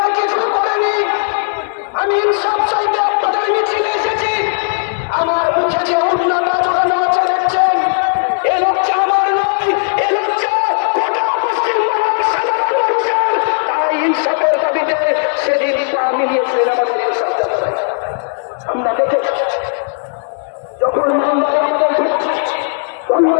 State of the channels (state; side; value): silent; right; digital silence